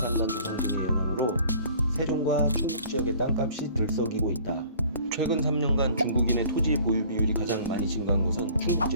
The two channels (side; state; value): both; inverted; correlation -0.51